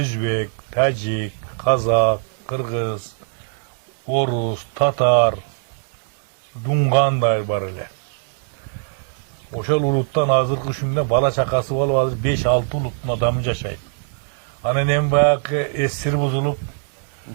Тажик, Казак, Кыргыз, Орус, Татар, Дунгандай бар эле. Ошол улуттан азыркы күндө бала чакасы болуп азыр 5-6 улуттун адамы жашайт. Анан эми баягы эсир бузулуп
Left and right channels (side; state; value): left; silent; digital silence